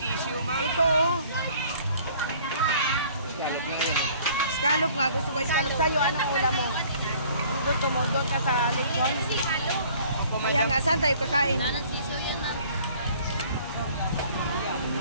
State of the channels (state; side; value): inverted; both; correlation -0.54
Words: ma'am. Ito oh. Scallop nga. Gusto ko scallop sa'yo. Anong ulam mo? Ang gusto mo? Doon ka sa lechon? Kaya nga, saan tayo kakain?